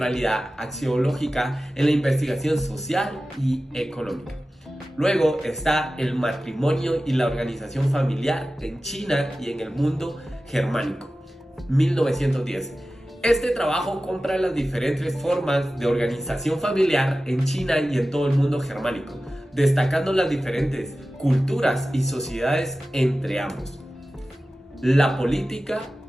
axiológica en la investigación social y económica. Luego está el matrimonio y la organización familiar en China y en el mundo germánico, 1910. Este trabajo compara las diferentes formas de organización familiar en China y en todo el mundo germánico, destacando las diferentes culturas y sociedades entre ambos. La política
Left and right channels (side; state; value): both; normal; correlation 0.95